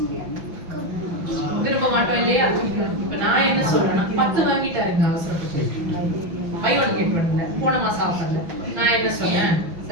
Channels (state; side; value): late; left; 5.9 ms